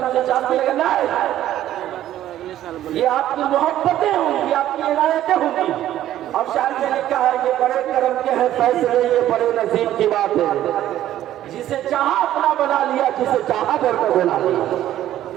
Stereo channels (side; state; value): left; quieter; 12.7 dB